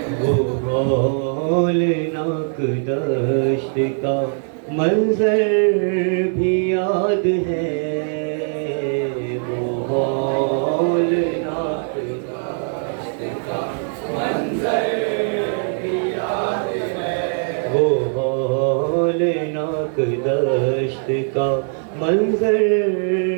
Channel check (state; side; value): silent; left; 58 dB below the other